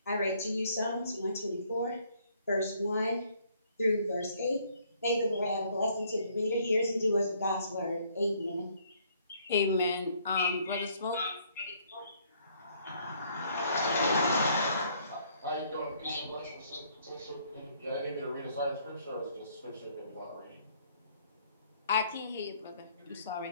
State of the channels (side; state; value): both; inverted; correlation -0.65